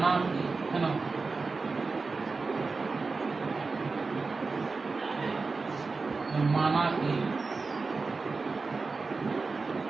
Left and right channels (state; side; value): quieter; left; 4.1 dB